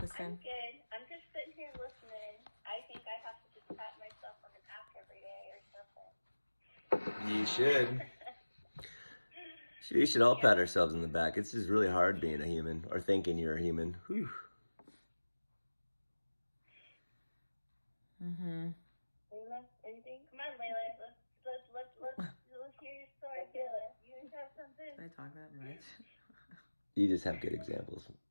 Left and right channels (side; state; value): both; inverted; correlation -1.00